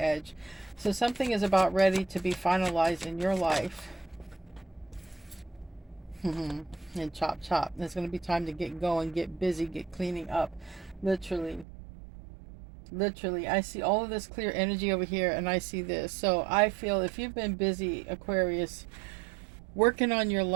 So something is about ready to be finalized in your life. And chop chop. It's going to be time to get going, get busy, get cleaning up. Literally. Literally. I see all of this clear energy over here, and I see this. So I feel if you've been busy, Aquarius, working on your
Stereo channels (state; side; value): drops out; left; at 11.7 s